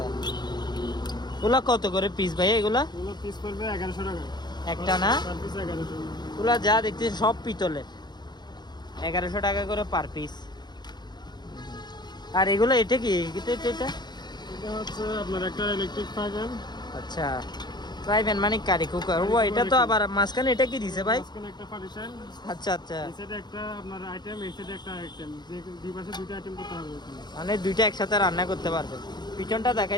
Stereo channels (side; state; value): right; late; 0.21 ms